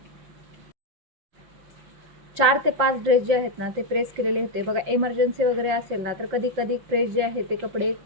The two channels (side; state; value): left; late; 5.7 ms